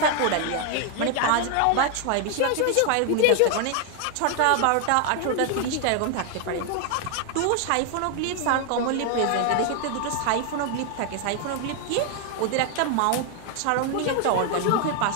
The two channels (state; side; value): different; both; correlation 0.01